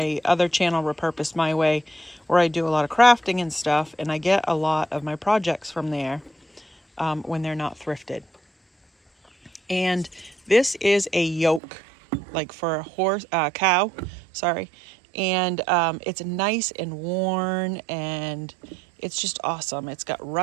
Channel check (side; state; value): left; drops out; at 11.6 s